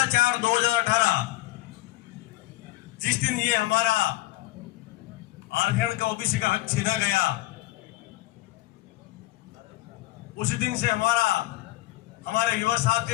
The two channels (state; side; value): quieter; right; 17.9 dB